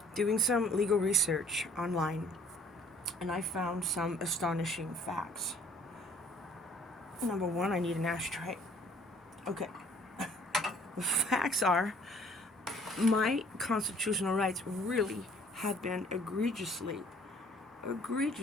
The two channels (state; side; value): normal; both; correlation 0.57